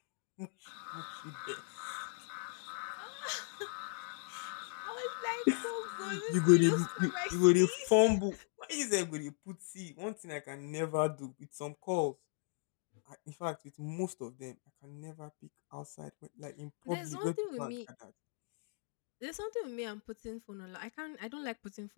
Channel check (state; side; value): silent; right; 52 dB below the other